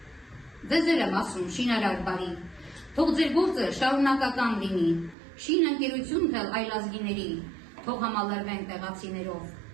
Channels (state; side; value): drops out; left; at 5.2 s